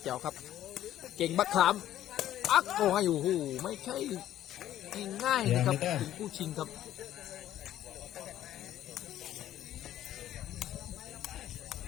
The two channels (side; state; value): right; quieter; 12.4 dB